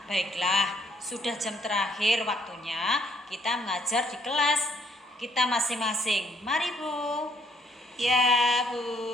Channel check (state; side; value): normal; both; correlation 0.67